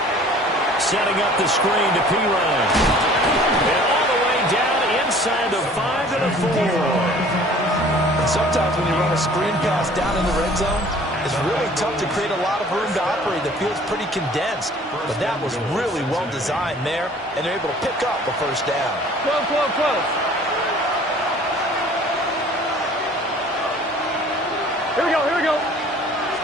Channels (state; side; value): normal; both; correlation 0.50